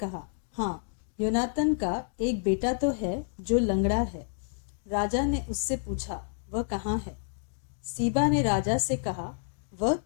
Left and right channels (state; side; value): silent; right; digital silence